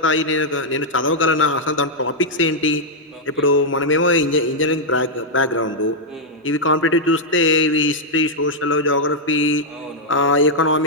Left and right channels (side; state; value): both; normal; correlation -0.04